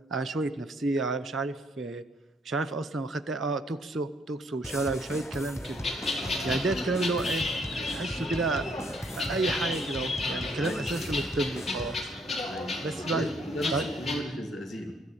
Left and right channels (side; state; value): both; normal; correlation 0.67